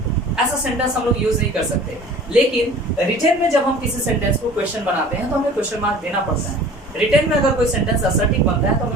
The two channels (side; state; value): both; normal; correlation 0.45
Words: ऐसा सेंटेंस हम लोग यूज नहीं कर सकते। लेकिन रिटन में जब हम किसी सेंटेंस को क्वेश्चन बनाते हैं तो हमें क्वेश्चन मार्क देना पड़ता है। रिटन में अगर कोई सेंटेंस असर्टिव बनता है तो